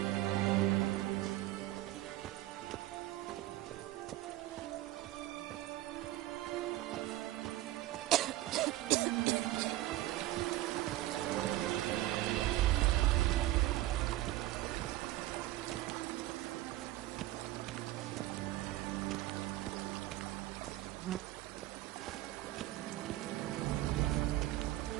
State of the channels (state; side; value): quieter; left; 16.1 dB